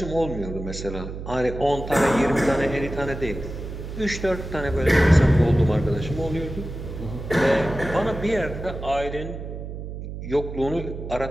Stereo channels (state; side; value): noise; right; hum, 8 dB below the sound